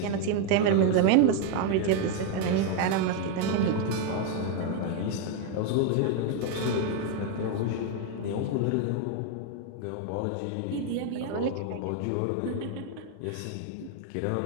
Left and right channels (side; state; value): both; different; correlation 0.01